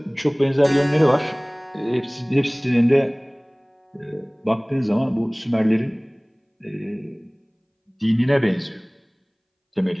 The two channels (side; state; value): both; identical; correlation 1.00